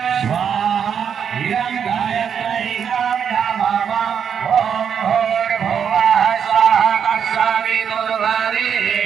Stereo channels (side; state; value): left; quieter; 7.7 dB